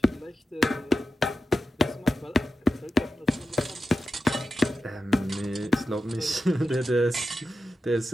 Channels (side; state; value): both; normal; correlation 0.91